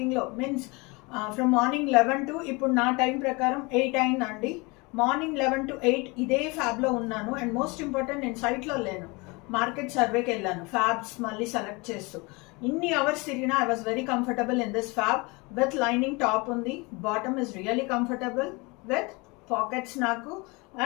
మీన్స్ ఫ్రమ్ మార్నింగ్ 11 to ఇప్పుడు నా టైం ప్రకారం 8 అయిందండి. మార్నింగ్ 11 to 8 ఇదే ఫ్యాబ్లో ఉన్నాను. అండ్ మోస్ట్ ఇంపార్టెంట్ నేను సైట్లో లేను, మార్కెట్ సర్వేకి వెళ్ళాను ఫ్యాబ్స్ మళ్ళీ సెలెక్ట్ చేస్తూ. ఇన్ని అవర్స్ తిరిగినా I was very comfortable in this fab with lining top ఉంది. Bottom is really comfortable with pockets నాకు,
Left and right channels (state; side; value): quieter; right; 26.7 dB